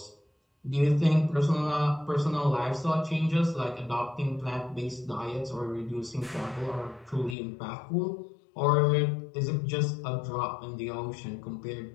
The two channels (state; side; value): drops out; right; at 7.4 s